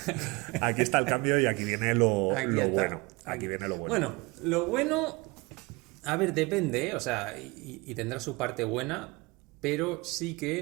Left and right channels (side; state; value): left; quieter; 25.1 dB